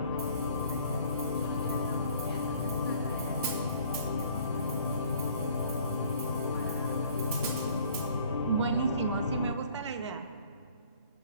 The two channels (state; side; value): inverted; both; correlation -0.56